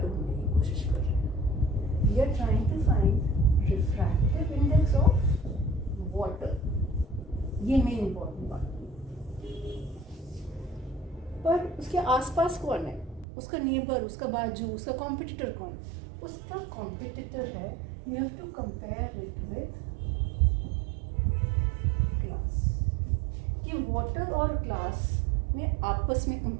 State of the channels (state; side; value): drops out; left; at 13.2 s